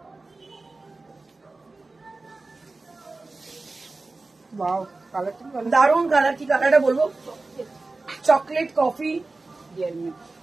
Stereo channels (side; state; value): left; quieter; 3.4 dB